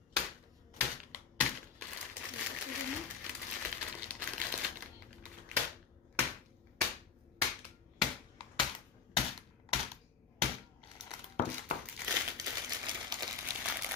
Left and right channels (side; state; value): right; quieter; 6.6 dB